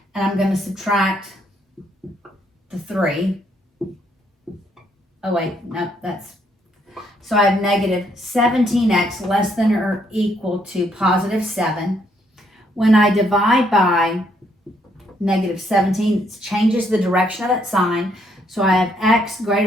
And I'm going to subtract the 3. Oh, wait, no, that's... So I have negative 17x less than or equal to positive 7. When I divide by negative 17, it changes the direction of that sign. So I have x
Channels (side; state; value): both; normal; correlation 0.71